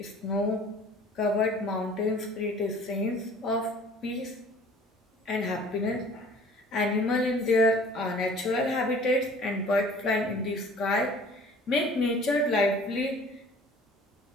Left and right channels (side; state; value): both; normal; correlation 0.49